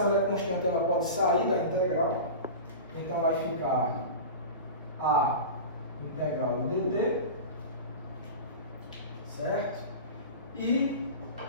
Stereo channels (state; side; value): inverted; both; correlation -0.30